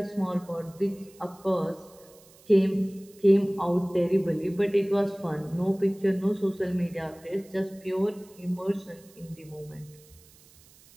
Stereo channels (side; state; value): right; noise; hiss, 26 dB below the sound